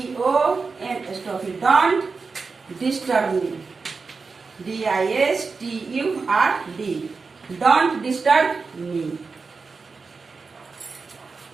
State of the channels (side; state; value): left; quieter; 4.6 dB